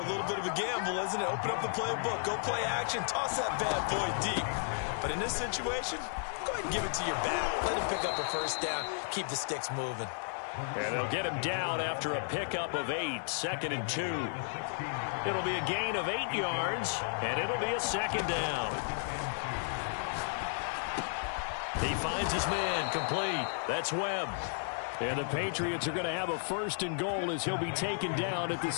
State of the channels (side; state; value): right; silent; digital silence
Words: little bit of a gamble, isn't it? Open up the playbook, go play action, toss that bad boy deep. But in this situation, go ahead and give it to your back. Let him pick up a first down, keep the sticks moving. And they'll get him down after a pickup of 8, 2nd and 2. It'll be a gain of 8 yards, and it'll be a 2nd down. He finds his man, complete. That's Webb. And the Patriots are going to have a 1st and goal as he'll be taken down at the